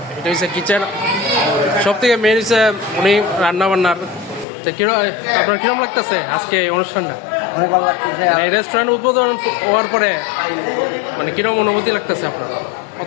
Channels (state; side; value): drops out; right; at 4.5 s